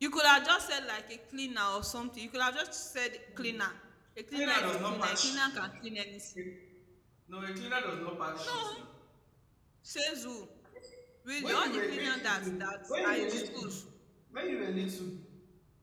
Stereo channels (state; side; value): identical; both; correlation 1.00